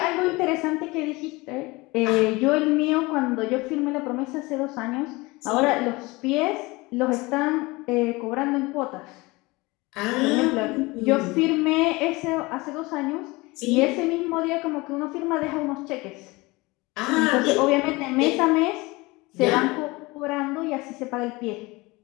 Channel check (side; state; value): right; quieter; 23.0 dB